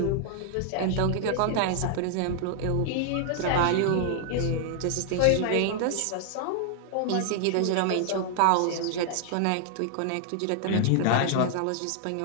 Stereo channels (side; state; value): both; different; correlation -0.01